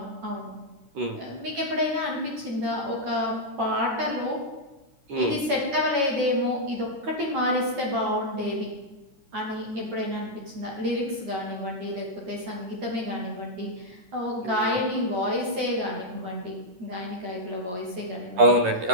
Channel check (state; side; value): late; left; 11 ms